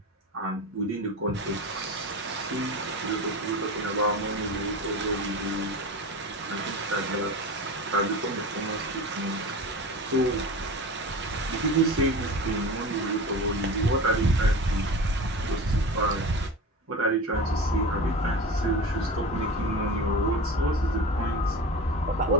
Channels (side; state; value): both; normal; correlation 0.30